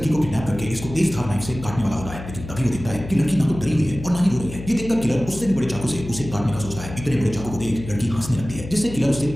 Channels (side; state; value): left; noise; hum, 11 dB below the sound